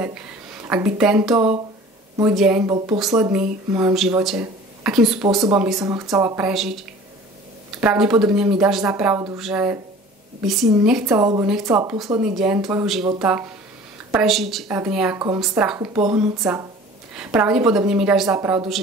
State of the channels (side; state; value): both; normal; correlation 0.45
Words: Ak by tento môj deň bol posledný v mojom živote, akým spôsobom by som ho chcela prežiť. Pravdepodobne mi dáš za pravdu, že by si nechcela alebo nechcela posledný deň tvojho života prežiť v nejakom strachu, pohnúť sa. Pravdepodobne mi dáš za pravdu,